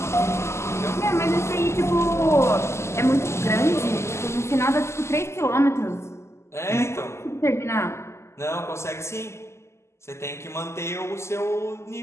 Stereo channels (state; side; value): late; right; 0.13 ms